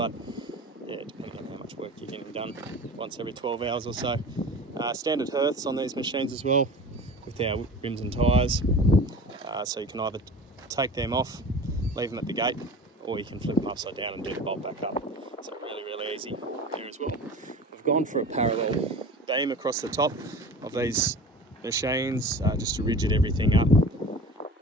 yeah, depending on how much work you're getting done, once every 12 hours or so. Standard hearths on these machines as well, with our rims and tyres. So you can either take them off, leave them at the gate, or you can flip them upside down and do the bolt back up. So really, really easy here as well. We've gone for a parallel beam across the top of these machines, just to rigid everything up and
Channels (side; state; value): both; normal; correlation 0.37